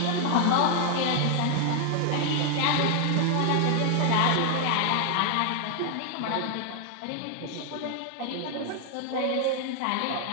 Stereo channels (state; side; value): different; both; correlation 0.00